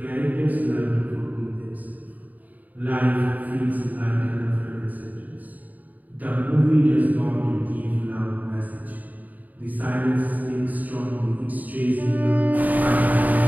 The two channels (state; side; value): late; left; 0.079 ms